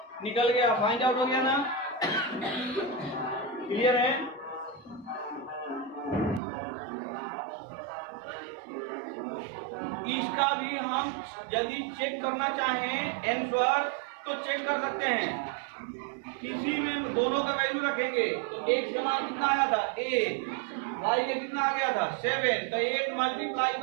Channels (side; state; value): left; drops out; at 6.4 s